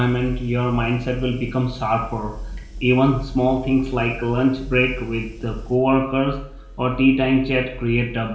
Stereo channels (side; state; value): both; identical; correlation 1.00